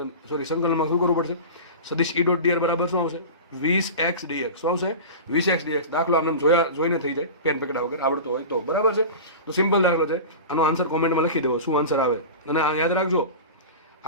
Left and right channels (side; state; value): both; inverted; correlation -0.31